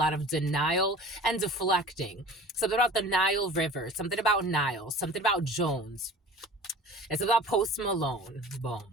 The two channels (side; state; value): both; normal; correlation 0.43